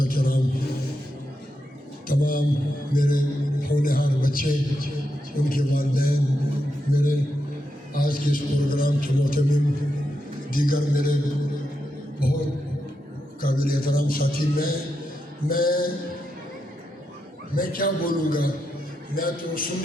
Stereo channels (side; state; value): both; normal; correlation 0.85